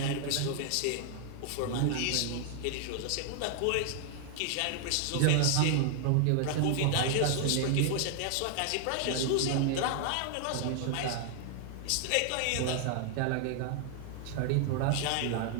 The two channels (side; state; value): both; different; correlation 0.00